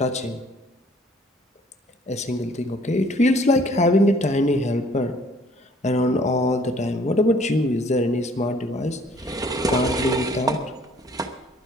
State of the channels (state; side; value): normal; both; correlation 0.57